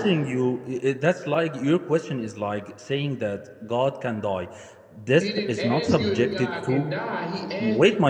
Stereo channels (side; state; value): both; identical; correlation 1.00